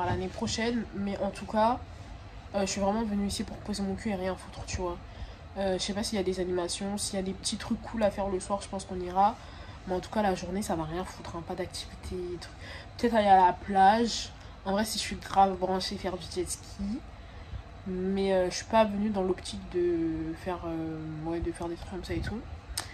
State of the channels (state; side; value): identical; both; correlation 1.00